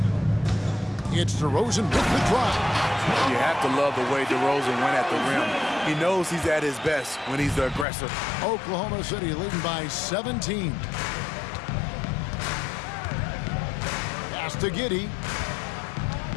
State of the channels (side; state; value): right; drops out; at 7.9 s